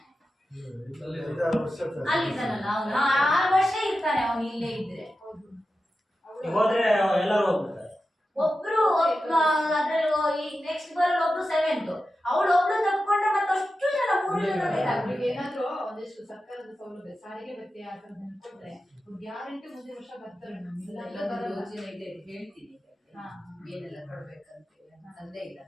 ಅಲ್ಲಿದ್ದಾನಲ್ಲ ಅವನು 6 ವರ್ಷ ಇರ್ತಾನೆ ಅವನು ಇಲ್ಲೇ ಇದ್ರೆ. ಹೋದ್ರೆ ಎಲ್ಲರೂ ಹೋಗ್ಬಿಡ್ತಾರೆ. ಒಬ್ರು ಅದ್ರಲ್ಲಿ ಈಗ ನೆಕ್ಸ್ಟ್ ಬರೋ ಒಬ್ರು 7th ಅವಳು ಒಬ್ಳು ತಪ್ಕೊಂಡ್ರೆ ಮತ್ತಷ್ಟು ಜನ 3 ಜನ ಬೇಕಾಗ್ತದೆ. ಅವ್ರಿಗೆ ಏನಾದ್ರು ಒಂದಿಷ್ಟು ಸರ್ಕಾರದ ಸೌಲಭ್ಯ ಸಾರಿಗೆ ಭತ್ಯೆ ಆ ಥರದ್ದು ಕೊಟ್ರೆ ಗ್ಯಾರಂಟಿ ಮುಂದಿನ ವರ್ಷ ಬರ್ತಾರೆ. ನಮ್ಗೆಲ್ಲ ಯೋಜನೆ ಇದೆ ಹೇಳ್ತೀನಿ ಏನೆಲ್ಲ ಕೊಡ್ಬೇಕಂತ ತಂದೆ ಇಲ್ಲ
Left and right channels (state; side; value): normal; both; correlation 0.92